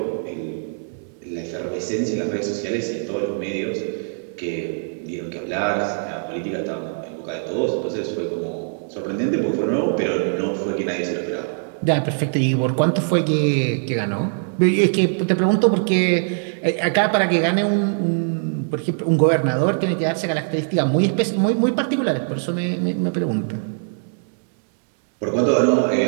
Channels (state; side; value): silent; left; digital silence